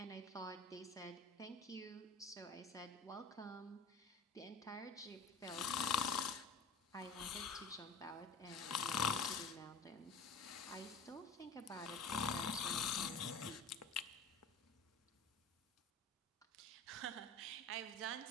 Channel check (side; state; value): right; quieter; 3.7 dB